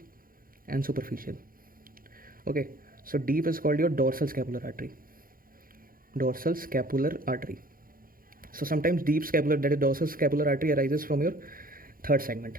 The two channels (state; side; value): late; left; 0.41 ms